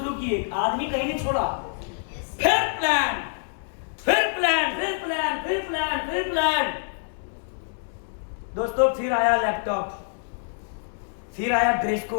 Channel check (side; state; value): right; silent; 59 dB below the other